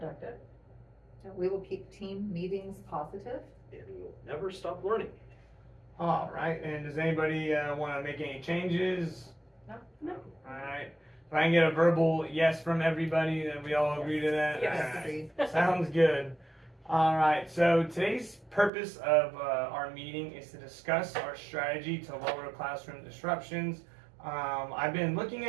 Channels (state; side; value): drops out; left; at 18.7 s